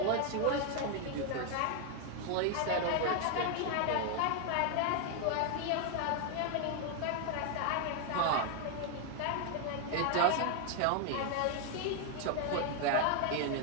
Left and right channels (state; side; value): different; both; correlation 0.00